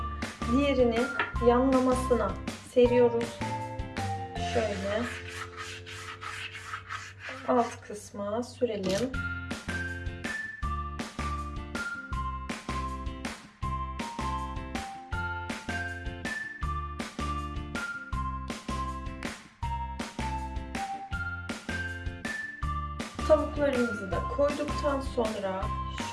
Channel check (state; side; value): identical; both; correlation 1.00